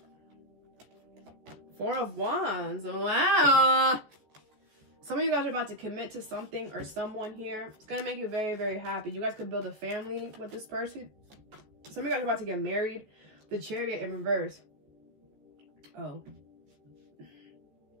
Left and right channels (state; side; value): late; left; 14 ms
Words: 4 of Wands. Wow. Some of you guys are about to commit to something or someone here. It's going to make you very, very happy. You guys could build a family with this person. Some of you guys are about to get married. The Chariot in reverse. Oh.